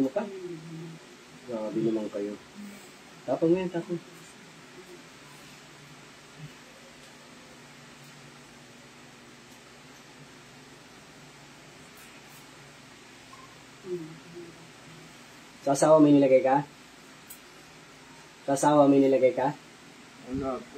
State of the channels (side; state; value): both; identical; correlation 1.00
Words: mo pa. Grabe naman kayo. Tapang mo yan, tapang. Sa asawa may nilagay ka? Sa asawa may nilagay ka? Wala po.